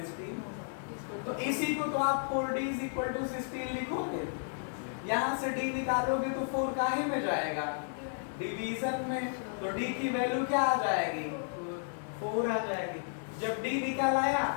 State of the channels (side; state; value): right; silent; digital silence